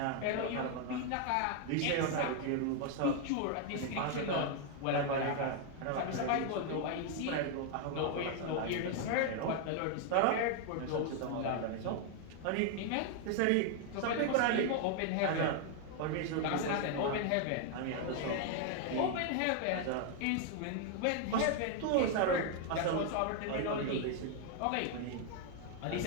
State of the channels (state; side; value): different; both; correlation 0.00